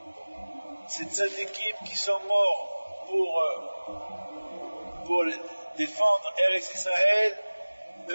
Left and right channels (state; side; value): inverted; both; correlation -1.00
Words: Ces tzaddikim qui sont morts pour défendre Eretz Israël,